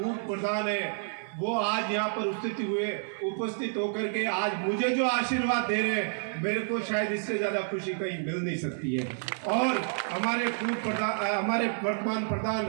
प्रधान है, वो आज यहाँ पर उपस्थित होकर के आज मुझे जो आशीर्वाद दे रहे हैं, मेरे को शायद इससे ज्यादा खुशी कहीं मिल नहीं सकती है। और हमारे वर्तमान प्रधान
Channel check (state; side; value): silent; left; digital silence